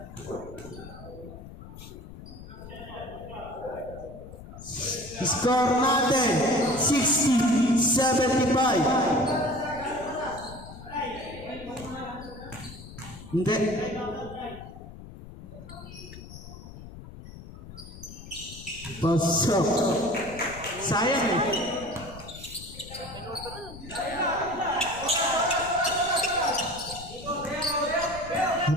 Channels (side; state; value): left; noise; rumble, 15 dB below the sound